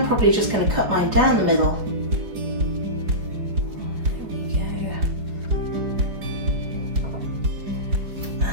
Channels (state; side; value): late; left; 4.8 ms